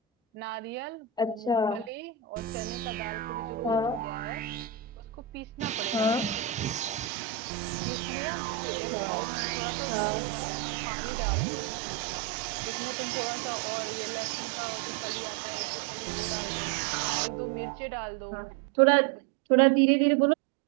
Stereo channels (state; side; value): drops out; left; at 7.1 s